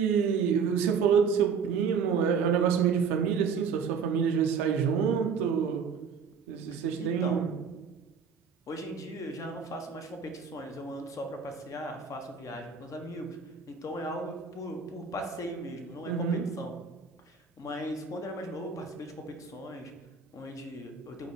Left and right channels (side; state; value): left; quieter; 6.0 dB